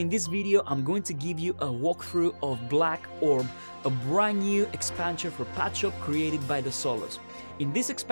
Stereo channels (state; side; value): inverted; both; correlation -1.00